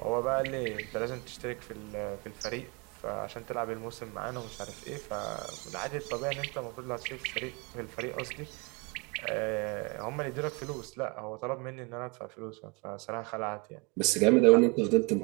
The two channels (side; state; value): left; quieter; 30.4 dB